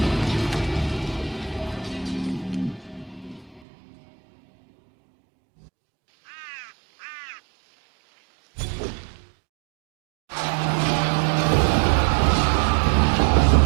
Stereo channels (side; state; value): left; drops out; at 3.6 s